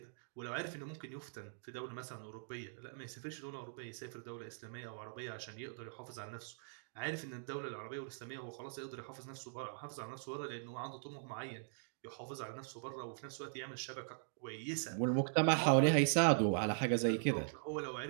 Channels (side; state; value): left; silent; digital silence